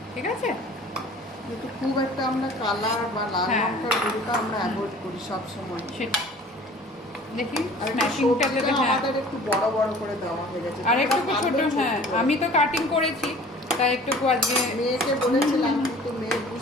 ঠিক আছে। কিন্তু খুব একটা আমরা কালার বা লাল লঙ্কার গুঁড়োটা আমরা অ্যাভয়েড করি সব সময়। সেটা দেখি স্ম্যাশিংটাতে আমাদের একটু বড় বড় করে দেওয়া হয়ে গেছে, আর একটু ছোট। হ্যাঁ, আমি তো কাটিং করেছি, তাই একটু আজকে মেয়েকে বলেছিলাম, কিন্তু মেয়ে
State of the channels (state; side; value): normal; both; correlation 0.47